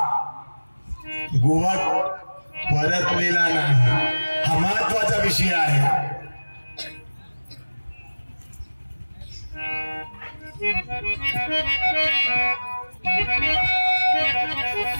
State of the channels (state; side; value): inverted; both; correlation -1.00